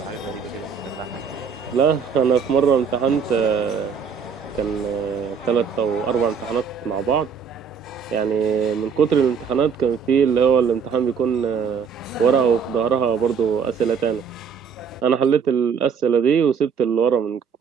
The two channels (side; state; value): left; quieter; 6.4 dB